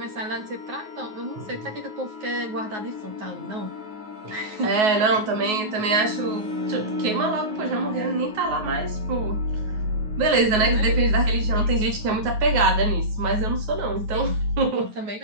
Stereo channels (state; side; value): late; left; 9.4 ms